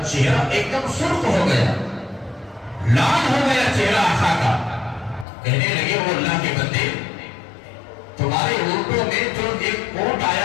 چہرہ ایک دم سرخ ہو گیا، لال ہو گیا چہرہ آقا کا، کہنے لگے وہ اللہ کے بندے، تمہارے اونٹوں میں جو ایک اونٹ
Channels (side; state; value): right; drops out; at 5.2 s